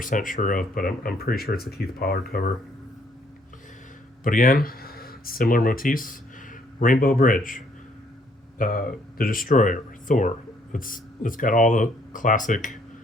sure of, but I'm pretty sure it's a Keith Pollard cover. But again, similar motifs. Rainbow Bridge, the Destroyer, Thor. It's got all the classic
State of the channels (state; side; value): normal; both; correlation 0.67